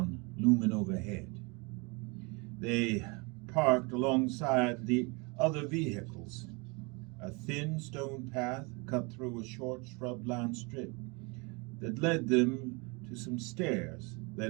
looming overhead. They parked alongside the other vehicles. A thin stone path cut through a short shrub-lined strip that led them to some stairs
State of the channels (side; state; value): left; quieter; 29.3 dB